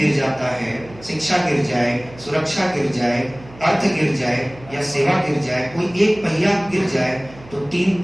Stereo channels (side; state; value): right; noise; hum, 21 dB below the sound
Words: जाता है, शिक्षा गिर जाए, सुरक्षा गिर जाए, अर्थ गिर जाए या सेवा गिर जाए, कोई एक पहिया गिर जाए तो 3